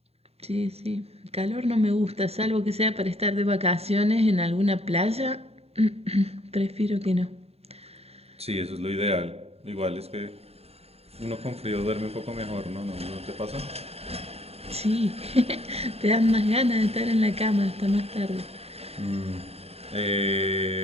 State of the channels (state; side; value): late; left; 0.29 ms